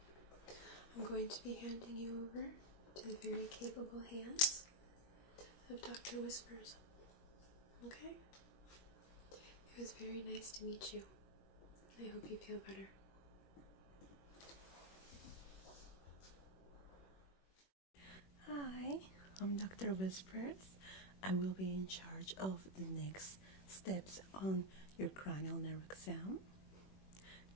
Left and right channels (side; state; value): right; late; 21 ms